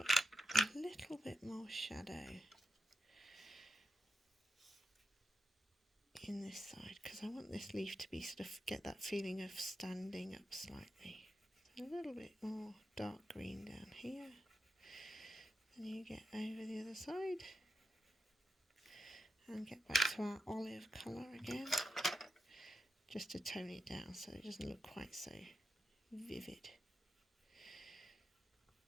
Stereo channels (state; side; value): normal; both; correlation 0.87